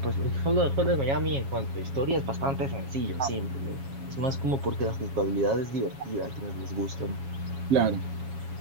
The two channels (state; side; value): late; left; 7.2 ms